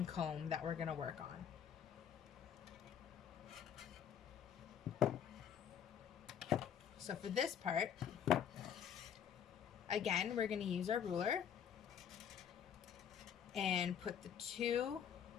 comb that we're going to work on. So for this part, again, we're going to use our ruler and put the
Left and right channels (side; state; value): right; quieter; 8.6 dB